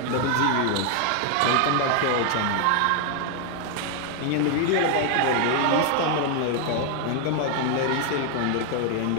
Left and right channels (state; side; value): different; both; correlation 0.00